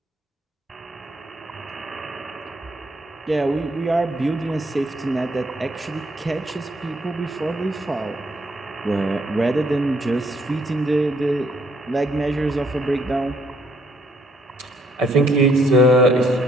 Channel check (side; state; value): both; normal; correlation 0.69